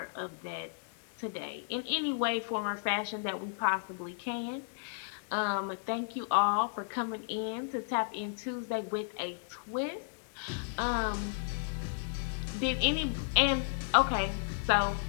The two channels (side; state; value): right; silent; digital silence